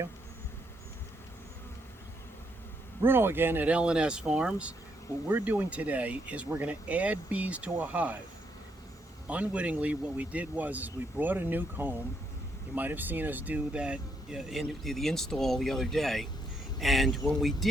Bruno again at L&S Farms. What we're doing today is we're going to add bees to a hive. Unwittingly, what we did was we brought a nuke home. You might have seen us do that in the install the other day. And when we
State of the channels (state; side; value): normal; both; correlation 0.76